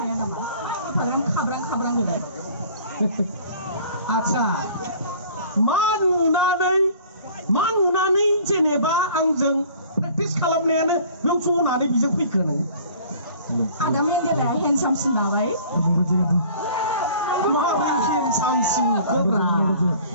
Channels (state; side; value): inverted; both; correlation -0.49